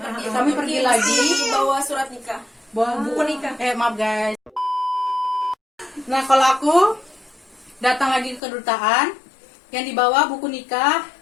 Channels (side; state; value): right; drops out; at 8.4 s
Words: Kami pergi lagi. Bawa surat nikah. Bawa Buku nikah. maaf guys. Nah kalau aku datang lagi ke kedutaan, yang dibawa buku nikah,